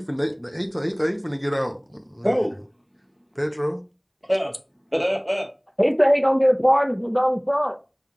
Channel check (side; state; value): both; identical; correlation 1.00